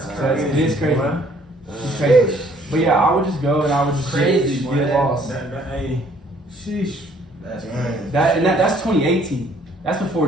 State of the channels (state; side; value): normal; both; correlation 0.61